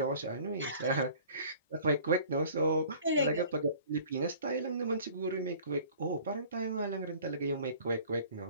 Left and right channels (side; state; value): both; inverted; correlation -0.49